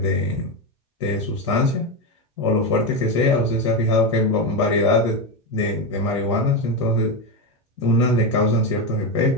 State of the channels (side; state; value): both; normal; correlation 0.12